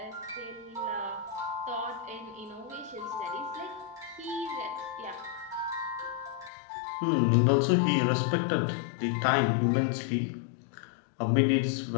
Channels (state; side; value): drops out; right; at 6.5 s